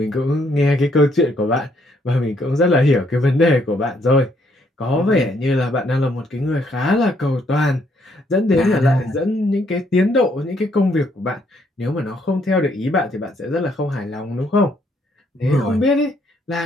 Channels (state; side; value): normal; both; correlation 0.70